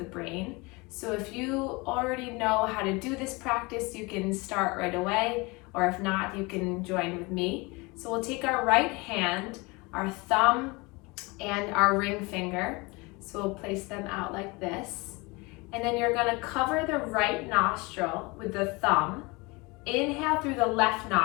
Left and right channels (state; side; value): quieter; right; 25.7 dB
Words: brain. So if you already know how to do this practice, you can start right away, or if not, you can join with me. So we'll take our right hand, our thumb, and our ring finger. So we'll place them out like this. And then you're gonna cover the right nostril with the thumb. Inhale through the left